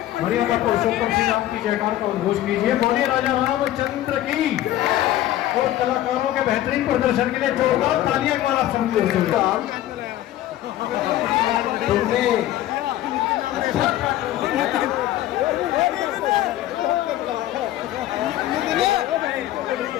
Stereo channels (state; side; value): quieter; right; 13.8 dB